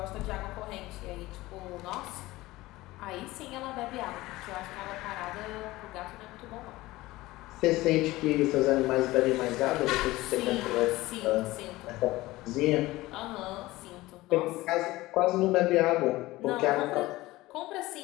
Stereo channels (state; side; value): quieter; right; 18.7 dB